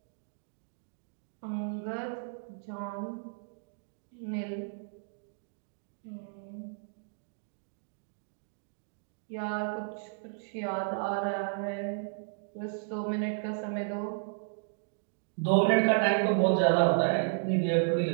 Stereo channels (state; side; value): silent; left; digital silence